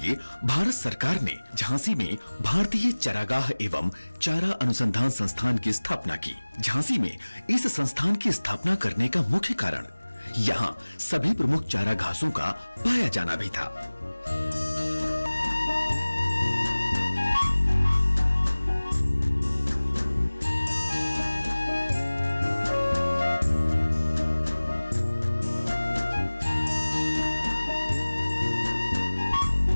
भारत सरकार ने झांसी में भारतीय चारागाह एवं चारा अनुसंधान संस्थान की स्थापना की। झांसी में इस संस्थान की स्थापना करने का मुख्य कारण यहाँ सभी प्रमुख चारा घासों का पाया जाना भी था।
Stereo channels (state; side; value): inverted; both; correlation -1.00